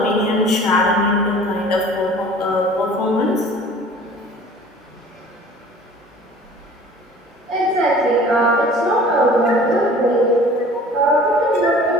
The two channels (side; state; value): both; normal; correlation 0.47